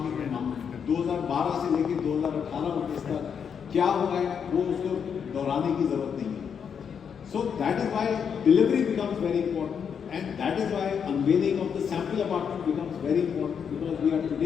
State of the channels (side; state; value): right; quieter; 7.2 dB